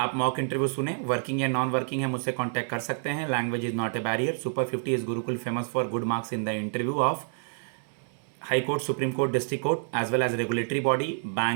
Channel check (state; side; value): silent; left; digital silence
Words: मॉक इंटरव्यू सुने, वर्किंग या नॉन वर्किंग है मुझसे कांटेक्ट कर सकते हैं। Language is not a barrier. Super 50 is Gurukul famous for good marks in the interview of high court, supreme court, district court, as well as regulatory body,